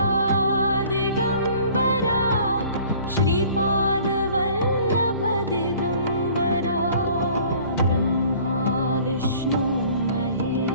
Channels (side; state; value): both; inverted; correlation -0.51